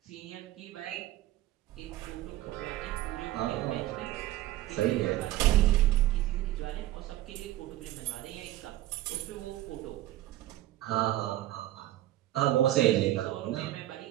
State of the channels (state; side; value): quieter; left; 14.9 dB